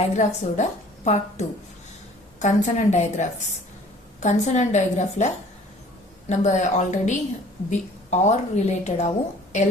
ஓட part 2 consonant digraphs. Consonant digraphல நம்ம ஆல்ரெடி or related ஆவும் L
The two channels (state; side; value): normal; both; correlation 0.51